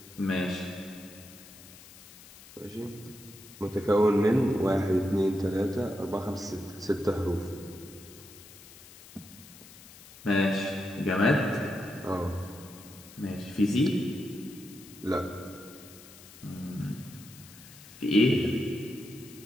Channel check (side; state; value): left; noise; hiss, 19 dB below the sound